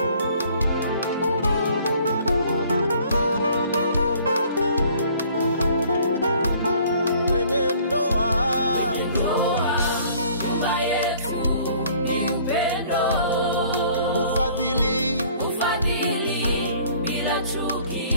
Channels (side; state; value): both; inverted; correlation -0.56